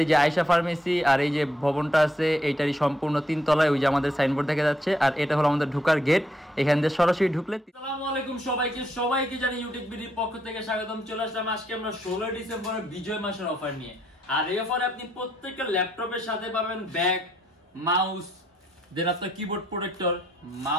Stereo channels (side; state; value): both; normal; correlation 0.74